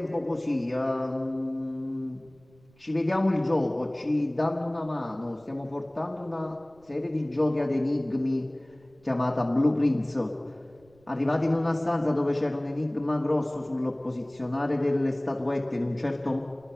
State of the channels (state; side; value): noise; right; rumble, 30 dB below the sound